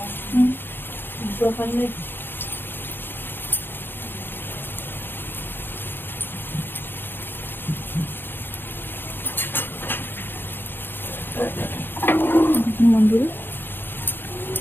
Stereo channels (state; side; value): late; right; 0.10 ms